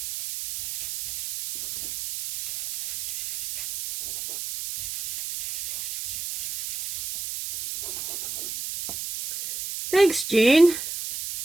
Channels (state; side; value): noise; right; hiss, 6 dB below the sound